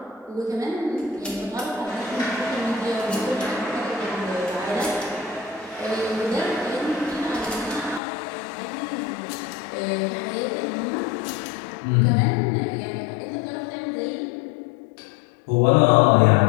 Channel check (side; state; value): right; drops out; at 8.0 s